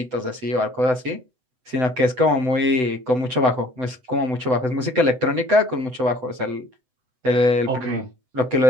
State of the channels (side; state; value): left; late; 7.9 ms